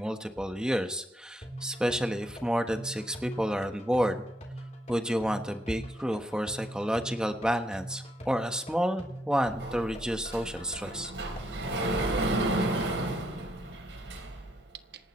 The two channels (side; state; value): both; normal; correlation 0.76